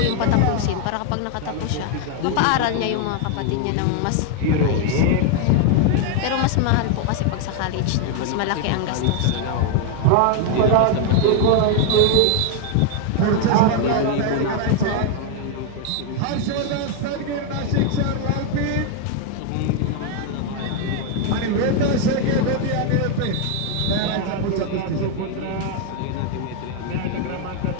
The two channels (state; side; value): different; both; correlation 0.01